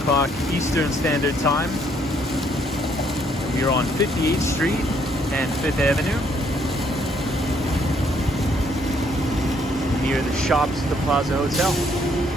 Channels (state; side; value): normal; both; correlation 0.68